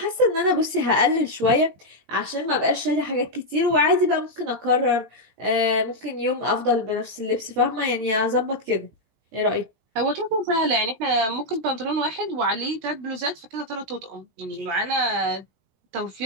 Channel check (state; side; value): late; left; 18 ms